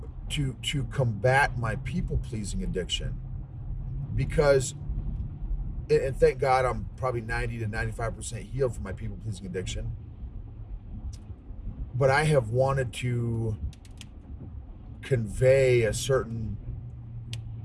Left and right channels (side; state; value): both; identical; correlation 1.00